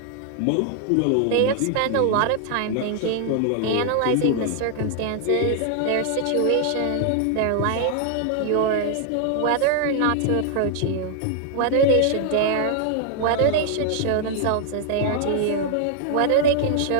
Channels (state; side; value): different; both; correlation 0.00